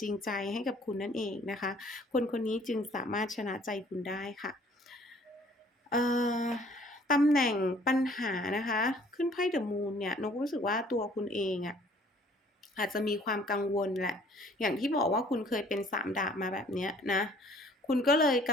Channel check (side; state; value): both; normal; correlation 0.57